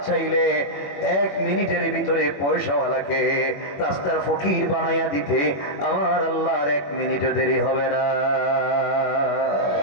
চাইলে 1 মিনিটের ভিতরে পয়সাওয়ালাকে রাস্তার ফকির বানাইয়া দিতে আমার আল্লাহর 1 মিনিটও দেরি হবে না।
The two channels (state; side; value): late; right; 21 ms